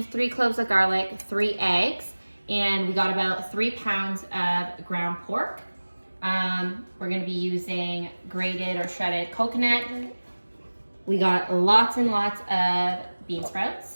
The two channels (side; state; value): both; inverted; correlation -1.00